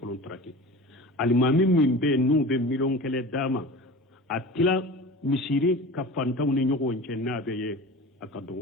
traki alimami min be nu be milon kele dama atila misiri ka fantaw ni nyogo nche na be ye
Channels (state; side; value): normal; both; correlation 0.35